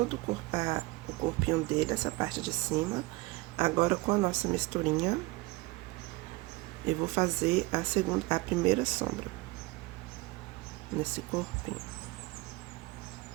o corpinho dele, essa parte de cima. Agora, com a nossa misturinha, eu vou fazer a primeira sombra nesse corpinho.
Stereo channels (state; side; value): quieter; left; 22.6 dB